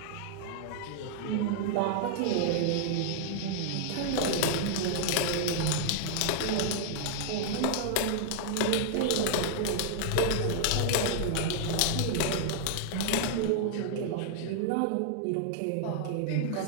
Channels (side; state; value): both; different; correlation -0.01